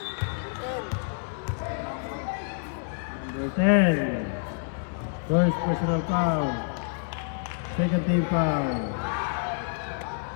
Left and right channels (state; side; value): silent; right; 59 dB below the other